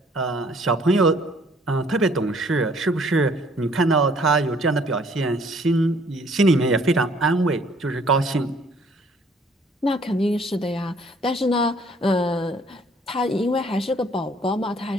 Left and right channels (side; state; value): both; normal; correlation 0.60